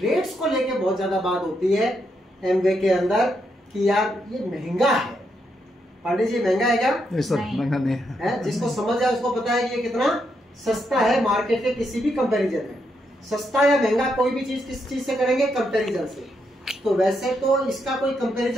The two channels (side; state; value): both; normal; correlation 0.80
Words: को लेके बहुत ज्यादा बात होती है एमवे के अंदर कि यार ये महंगा है। पांडे जी महंगा है क्या? महंगा नहीं है। जिसको समझ है उसको पता है कि ये कितना सस्ता है मार्केट के किसी भी कंपैरिजन में। सस्ता या महंगा कोई भी चीज किस चीज से करेंगे? कंपैरिजन से। तो वैसे तो इसका कोई